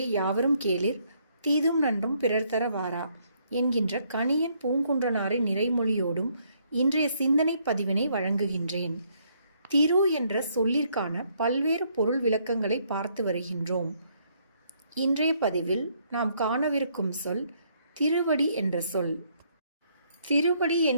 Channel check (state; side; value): inverted; both; correlation -0.70